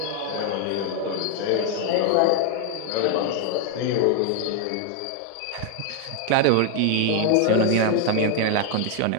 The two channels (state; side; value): different; both; correlation 0.01